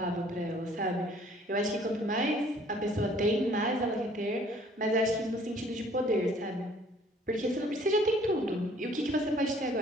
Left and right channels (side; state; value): both; normal; correlation 0.57